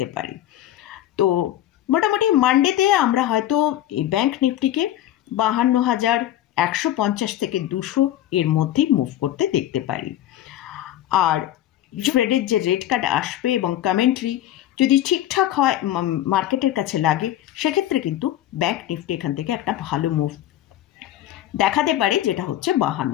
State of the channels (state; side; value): quieter; right; 12.7 dB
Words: পারি। তো মোটামুটি মানডেতে আমরা হয়তো এই ব্যাংক নিফটিকে 52,150 থেকে 200 এর মধ্যেই মুভ করতে দেখতে পারি। আর ফেডের যে রেট কাট আসবে এবং কমেন্ট্রি যদি ঠিকঠাক হয়, মার্কেটের কাছে লাগে, সেক্ষেত্রে কিন্তু ব্যাংক নিফটি এখান থেকে একটা ভালো মুভ দেখাতে পারে, যেটা হচ্ছে